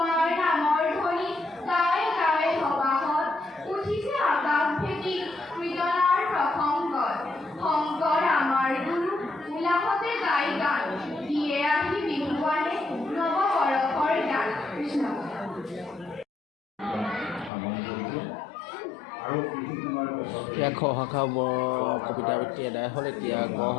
নামৰ ধ্বনি গাই গাই সবাহত উঠিছে আকাশ ভেটি কীৰ্তনাৰ প্ৰসংগত শংকৰ আমাৰ গুৰু উলাহতে গাই গান দিয়ে আহি বিহুৱানে নৱবৰষৰ গান কৃষ্ণ এতিয়া খ শাখা কবিতা আবৃত্তি এদায় হ'ল এতিয়া গ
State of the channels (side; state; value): right; drops out; at 17.5 s